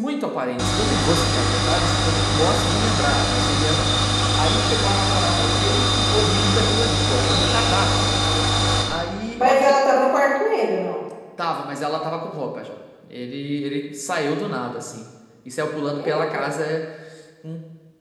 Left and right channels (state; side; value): identical; both; correlation 1.00